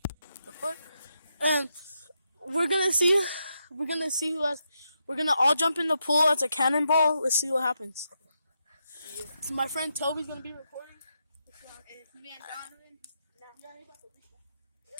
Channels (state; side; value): inverted; both; correlation -0.83